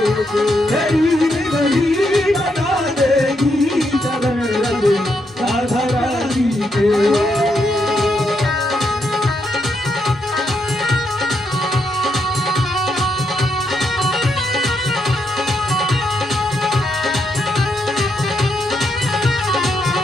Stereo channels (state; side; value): normal; both; correlation 0.79